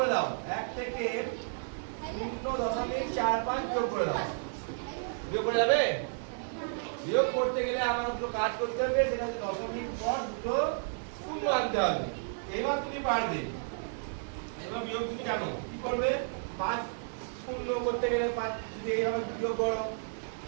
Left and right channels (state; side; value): silent; left; digital silence